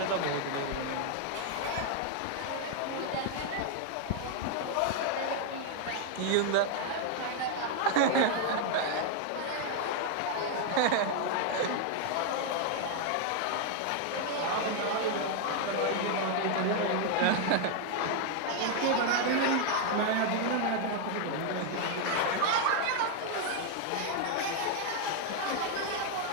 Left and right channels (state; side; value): different; both; correlation 0.00